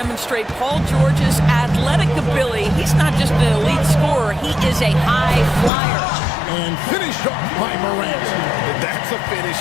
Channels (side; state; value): right; drops out; at 5.7 s